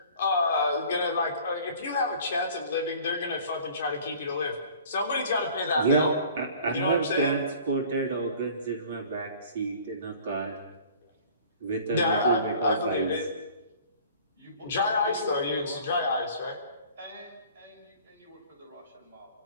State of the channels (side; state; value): both; inverted; correlation -0.49